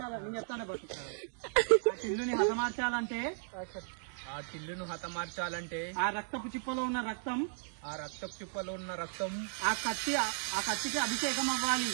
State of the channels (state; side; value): silent; left; 54 dB below the other